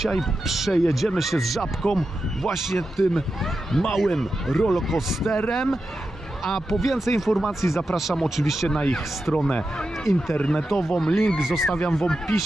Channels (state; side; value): normal; both; correlation 0.89